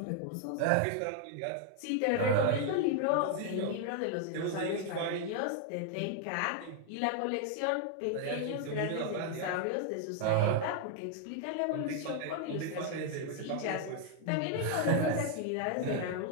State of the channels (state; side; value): different; both; correlation 0.00